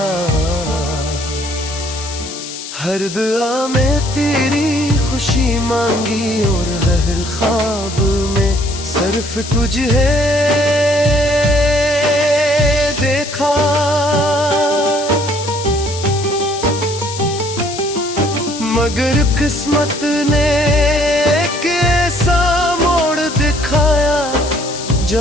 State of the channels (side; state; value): left; noise; hiss, 10 dB below the sound